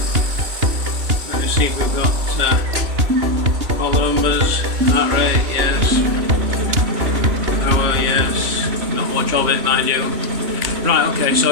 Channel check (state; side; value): late; left; 2.8 ms